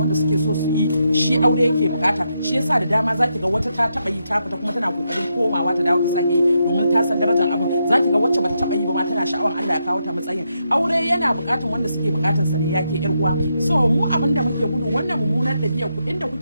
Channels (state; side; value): inverted; both; correlation -0.82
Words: suke so su yi shi aure yake bukata shi yasa da dama zaki ga wata ta taba yi ta fita kuma tana kokarin komawa ta dawo ta sake yi domin ta san darajar abin zaki ga wacce bata taba yi ba ma tana sha'awar Allah ya kawo ta matsayin aure yana bukatar wanda suke bukatarsa ne yake yar uwa so mu abin da muke gudu wannan mummunar dabi'a ku inda